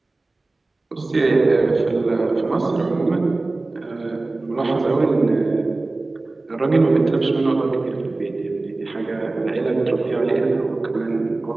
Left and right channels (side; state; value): left; quieter; 3.2 dB